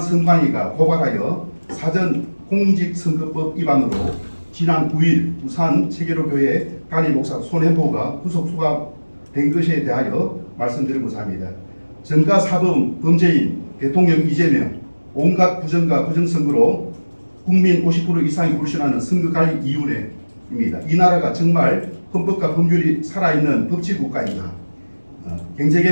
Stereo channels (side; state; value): both; inverted; correlation -1.00